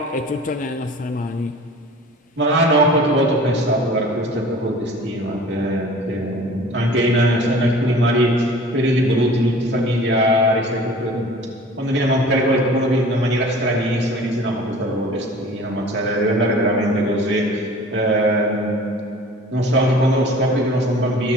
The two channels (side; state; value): both; normal; correlation 0.45